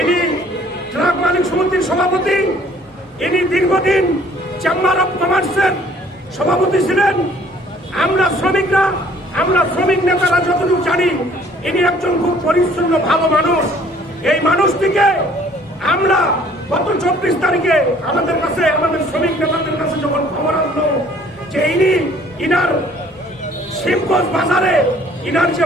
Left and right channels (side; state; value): both; normal; correlation 0.57